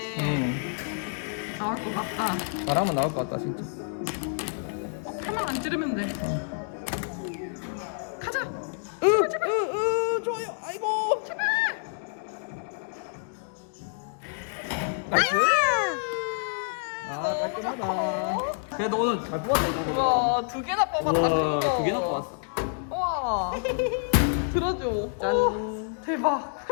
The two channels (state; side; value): silent; right; digital silence